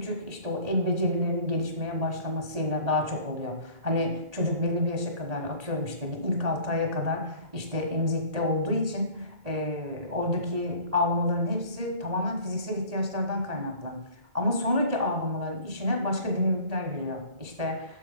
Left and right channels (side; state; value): left; late; 1.8 ms